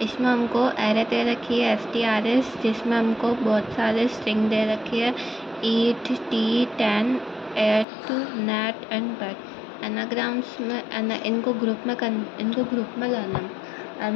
इसमें हमको एरे दे रखी है STRS, जिसमें हमको बहुत सारे स्ट्रिंग दे रखी है eat, tea, tan, ate, nat and bat. Anagrams में इनको ग्रुप में लाना है।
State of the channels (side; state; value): right; drops out; at 7.9 s